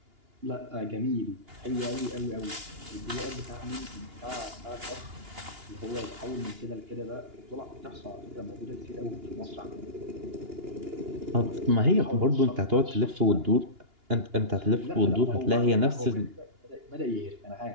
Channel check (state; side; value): late; left; 2.8 ms